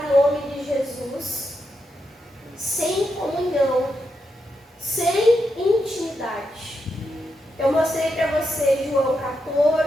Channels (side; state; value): both; normal; correlation 0.84